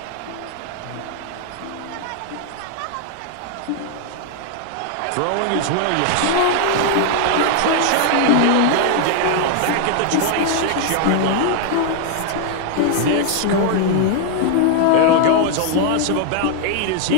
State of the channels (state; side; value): different; both; correlation 0.00